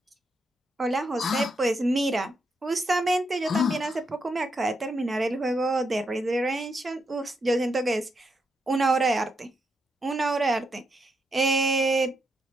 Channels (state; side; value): normal; both; correlation 0.81